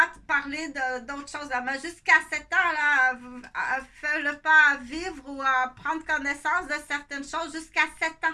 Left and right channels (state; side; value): identical; both; correlation 1.00